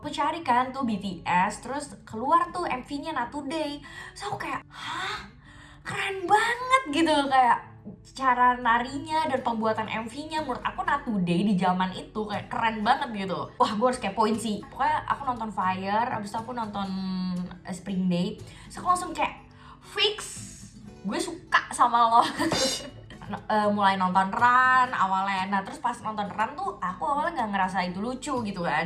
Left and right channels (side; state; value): both; identical; correlation 1.00